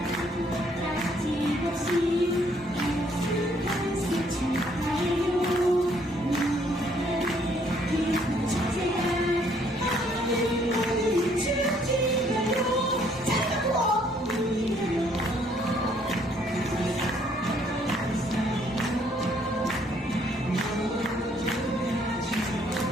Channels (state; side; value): normal; both; correlation 0.66